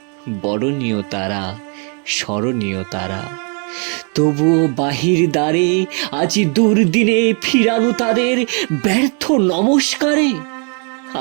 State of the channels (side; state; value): left; quieter; 38.3 dB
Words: বরণীয় তারা, স্মরণীয় তারা। তবুও বাহির দ্বারে আজি দুর্দিনে ফিরানো তাদের ব্যর্থ নমস্কারে।